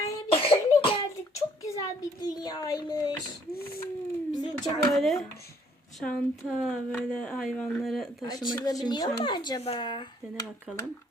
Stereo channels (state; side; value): normal; both; correlation 0.63